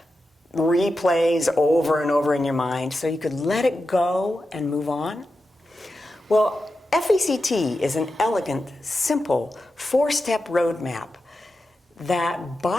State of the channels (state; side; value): normal; both; correlation 0.90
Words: replays over and over in your mind so you could let it go and move on? Well, F.A.C.T is an elegant, simple, four-step roadmap that